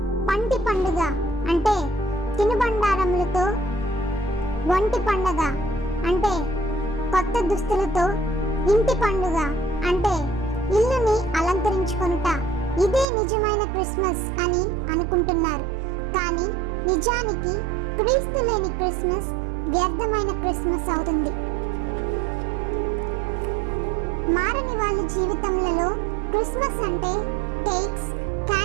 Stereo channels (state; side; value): drops out; left; at 13.1 s